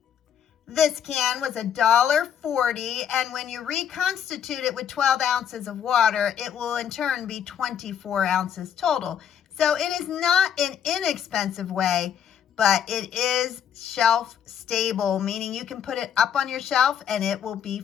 This can was $1.40, and when you reconstitute it with 12 ounces of water, it will in turn be 24 ounces total. So it is not an inexpensive way, but it is shelf stable, meaning you can put it up on your shelf and it will be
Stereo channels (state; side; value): quieter; right; 8.7 dB